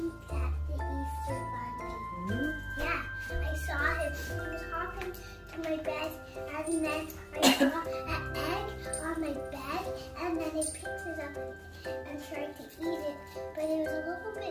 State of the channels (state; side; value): identical; both; correlation 1.00